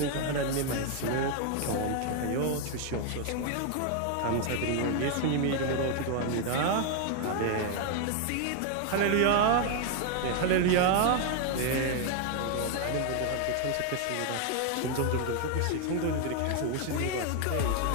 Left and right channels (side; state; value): both; different; correlation 0.00